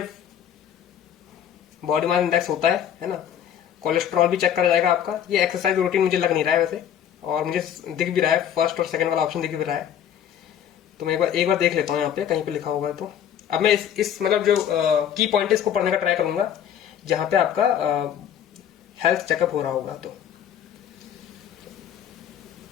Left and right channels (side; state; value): right; quieter; 9.6 dB